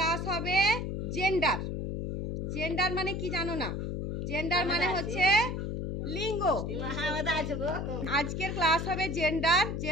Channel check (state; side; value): noise; left; hum, 3 dB below the sound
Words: হবে জেন্ডার। জেন্ডার মানে কি জানো না? জেন্ডার মানে হচ্ছে লিঙ্গ। আজকের ক্লাস হবে জেন্ডার।